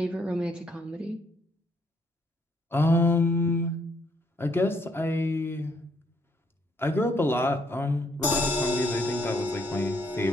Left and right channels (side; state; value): both; normal; correlation 0.70